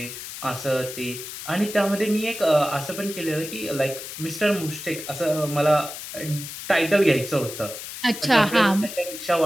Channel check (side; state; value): left; noise; hiss, 10 dB below the sound